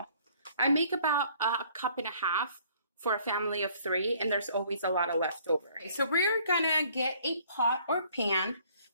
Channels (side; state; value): both; inverted; correlation -0.59